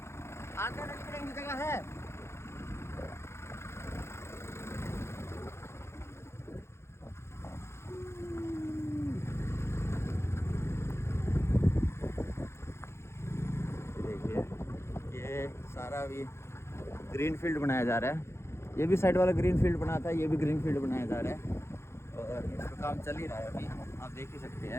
आगे लिगड़न की जगह है। देखिए ये सारा भी ग्रीन फील्ड बनाया जा रहा है। ये भी साइड वाला ग्रीन फील्ड बना था, ये भी ग्रीन फील्ड बनाया जा रहा है और इसका काम चल ही रहा है अभी, आप देख ही सकते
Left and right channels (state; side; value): late; right; 0.13 ms